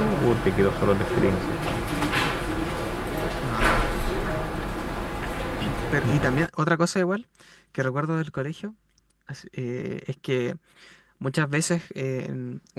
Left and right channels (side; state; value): both; identical; correlation 1.00